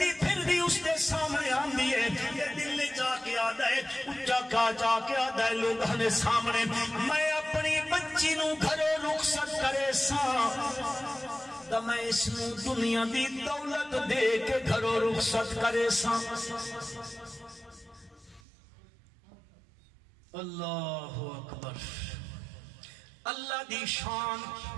پھر بھی اس دے سامنے آندی ہے یہ دل لے جا کے آدھا ہے اچھا کا جا کے آدھا ہے لوگوں نے سامنے میں اپنی بچی نو گھروں رخصت کرے ساں تو میں اس نو دنیا دی دولت دے کے گھروں رخصت کرے ساں اللہ اکبر اللہ دی شان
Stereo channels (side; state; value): left; drops out; at 18.4 s